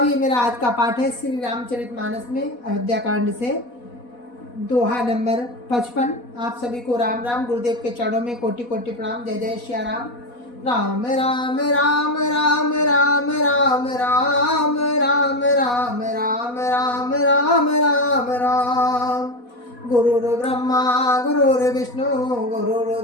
ये मेरा आज का पाठ है श्री रामचरितमानस में अयोध्या कांड से दोहा नंबर 55। आप सभी को राम राम। गुरुदेव के चरणों में कोटि कोटि प्रणाम। जय जय श्री राम। राम राम राम राम राम राम राम राम राम राम राम राम राम राम। गुरुर्ब्रह्मा गुरुर्विष्णु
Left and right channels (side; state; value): right; late; 4.1 ms